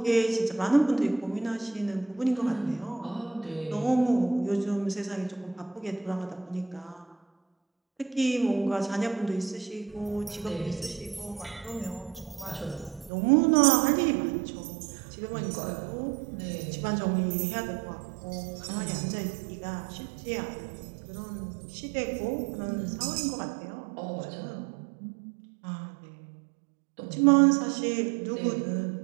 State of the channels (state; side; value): drops out; left; at 13.1 s